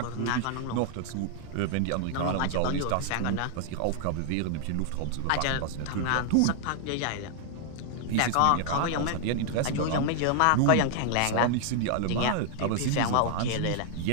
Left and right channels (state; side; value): different; both; correlation -0.01